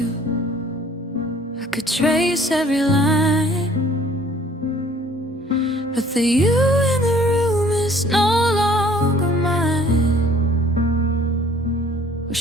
I could trace every line, but the you in the room is no longer mine. We're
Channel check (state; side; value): normal; both; correlation 0.55